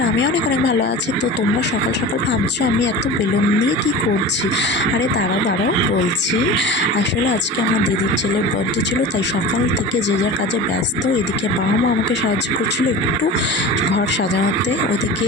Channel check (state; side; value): normal; both; correlation 0.33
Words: আমি অনেক অনেক ভালো আছি। তো তোমরা সকাল সকাল ভাবছো আমি এত বেলুন নিয়ে কি করছি। আরে দাঁড়াও বলছি। আসলে আজকে আমার দিদির ছেলের বার্থডে ছিল, তাই সকাল থেকে যে যার কাজে ব্যস্ত। এদিকে বাবা মা আমাকে সাহায্য করছিল একটু ঘর সাজানোতে।